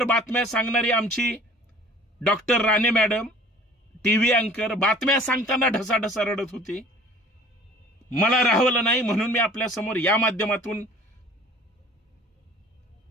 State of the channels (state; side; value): normal; both; correlation 0.49